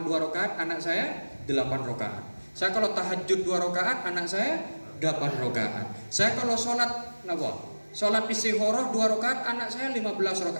2 rakaat, anak saya 8 rakaat. Saya kalau tahajud 2 rakaat, anak saya 8 rakaat. Saya kalau sholat istikharah 2 rakaat, anak saya 16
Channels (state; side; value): inverted; both; correlation -1.00